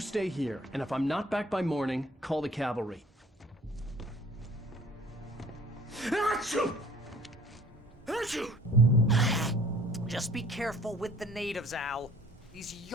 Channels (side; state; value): both; normal; correlation 0.52